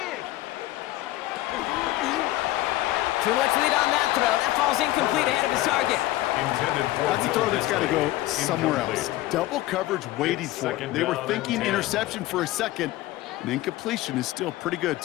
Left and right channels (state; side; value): quieter; right; 16.6 dB